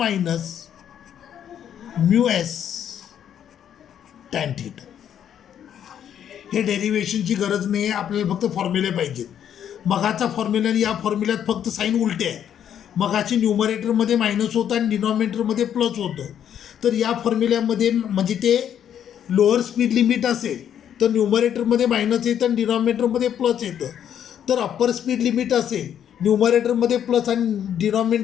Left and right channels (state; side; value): quieter; right; 9.5 dB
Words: mu S tan theta. हे डेरिवेशनची गरज नाही आहे, आपल्याला फक्त फॉर्म्युले पाहिजेत. मगाचा फॉर्म्युला आणि या फॉर्म्युल्यात फक्त साईन उलटे आहे. मगाची न्यूमरेटरमध्ये मायनस होतं आणि डिनॉमिनेटरमध्ये प्लस होतं. तर या फॉर्म्युल्यामध्ये म्हणजे ते लोअर स्पीड लिमिट असेल तर न्यूमरेटरमध्ये मायनस येतं आणि डिनॉमिनेटरमध्ये प्लस येतं. तर अप्पर स्पीड लिमिट असेल न्यूमरेटरमध्ये प्लस आणि